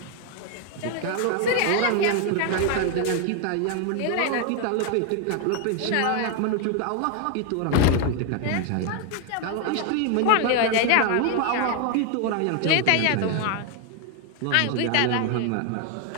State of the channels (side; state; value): both; different; correlation 0.01